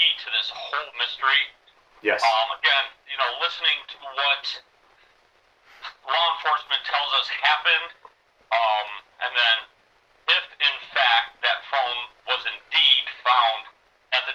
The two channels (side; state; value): both; identical; correlation 1.00